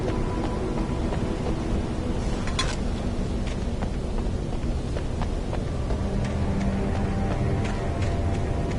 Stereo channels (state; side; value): identical; both; correlation 1.00